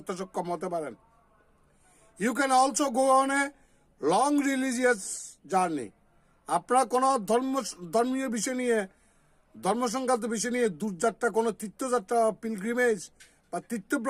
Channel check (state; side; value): identical; both; correlation 1.00